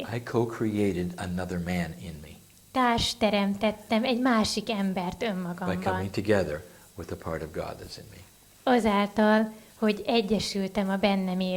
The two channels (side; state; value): both; identical; correlation 1.00